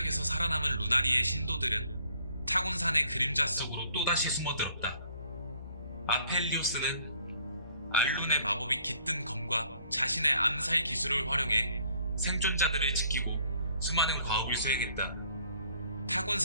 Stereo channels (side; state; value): both; inverted; correlation -0.61